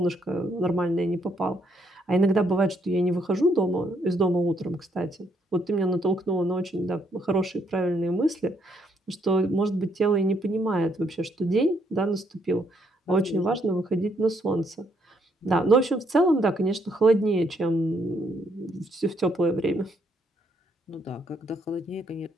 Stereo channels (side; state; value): both; normal; correlation 0.72